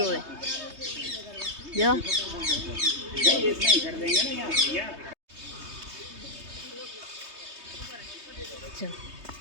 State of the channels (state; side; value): late; left; 3.2 ms